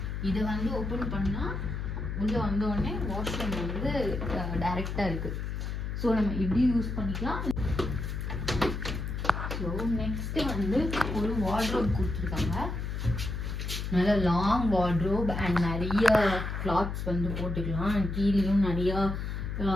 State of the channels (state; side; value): noise; left; hum, 4 dB below the sound